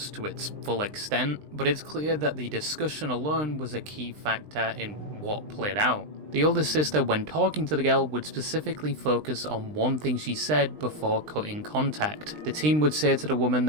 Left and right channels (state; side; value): late; left; 20 ms